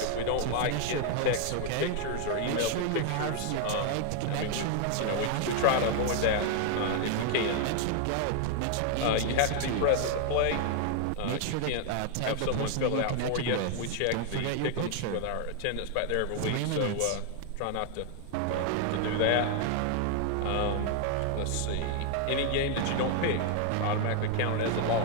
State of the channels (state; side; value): different; both; correlation 0.00